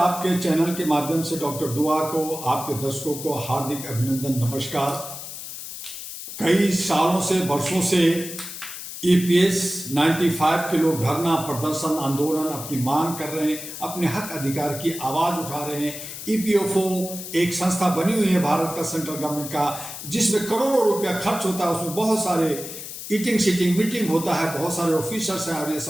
चैनल के माध्यम से डॉक्टर दुआ को, आपके दर्शकों को हार्दिक अभिनंदन, नमस्कार। कई सालों से, वर्षों से ईपीएस 95 के लोग धरना प्रदर्शन आंदोलन अपनी मांग कर रहे हैं, अपने हक अधिकार की आवाज उठा रहे हैं। ईपीएफओ एक संस्था बनी हुई है भारत का, सेंट्रल गवर्नमेंट का, जिसमें करोड़ों रुपया खर्च होता है। उसमें बहुत सारे ईटिंग सीटिंग मीटिंग होता है, बहुत सारे ऑफिसर्स हैं और ये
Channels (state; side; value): noise; left; hiss, 10 dB below the sound